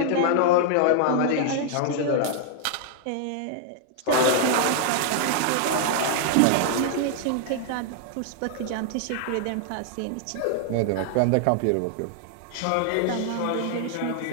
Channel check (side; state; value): both; different; correlation 0.00